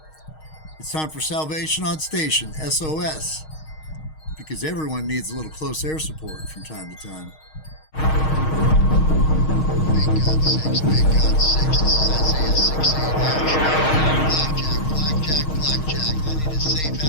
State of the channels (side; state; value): right; late; 6.4 ms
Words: It's time for Salvation on Station, SOS, because everyone needs a little close air support from time to time. Big God 6, Big God 6, this is Isaiah 6:8 action. Blackjack, I need a safe